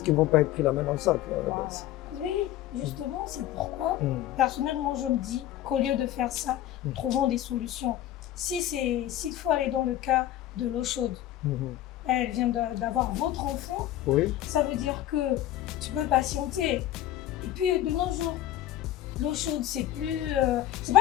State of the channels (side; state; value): right; quieter; 13.2 dB